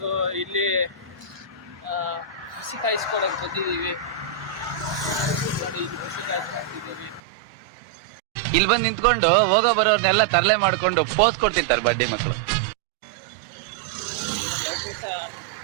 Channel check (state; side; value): drops out; left; at 7.2 s